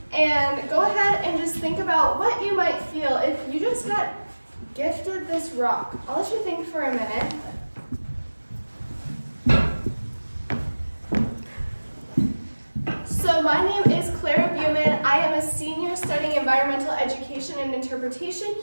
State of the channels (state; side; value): inverted; both; correlation -1.00